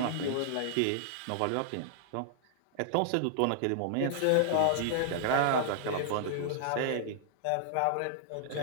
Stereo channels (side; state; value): both; different; correlation -0.01